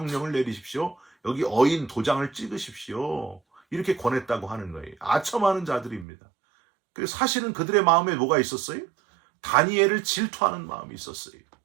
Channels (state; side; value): drops out; left; at 6.1 s